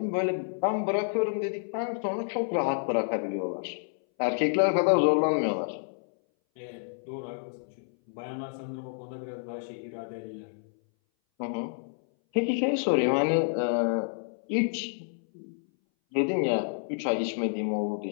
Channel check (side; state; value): right; silent; 58 dB below the other